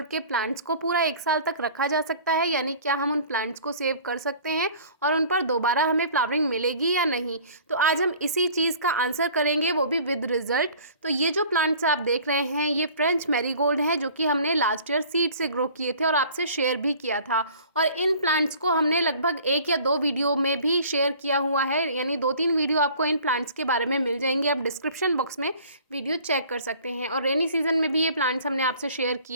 के प्लांट्स को पूरा 1 साल तक रखा जा सकता है, यानी क्या हम उन प्लांट्स को सेव कर सकते हैं और उन पर दोबारा हमें फ्लावरिंग मिलेगी या नहीं। तो आज हम इसी चीज़ का आंसर करेंगे, वो भी विद रिजल्ट। तो ये जो प्लांट्स आप देख रहे हैं ये फ्रेंच मैरीगोल्ड हैं, जो कि हमने लास्ट ईयर सीड से ग्रो किए थे और आपसे शेयर भी किया था। और इन प्लांट्स को हमने लगभग 1 या 2 वीडियो में भी शेयर किया हुआ है, यानी 2-3 वीडियो आपको इन प्लांट्स के बारे में मिल जाएंगे। आप डिस्क्रिप्शन बॉक्स में वीडियो चेक कर सकते हैं। और रेनी सीजन में भी ये प्लांट्स हमने आपसे शेयर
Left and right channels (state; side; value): inverted; both; correlation -0.48